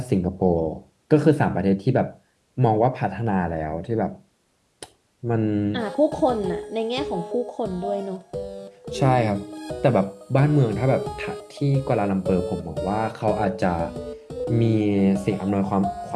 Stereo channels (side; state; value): both; identical; correlation 1.00